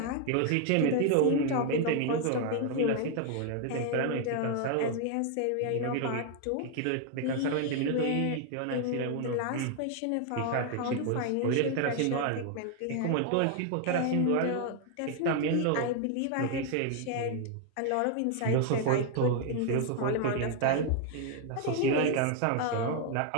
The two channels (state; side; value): different; both; correlation 0.00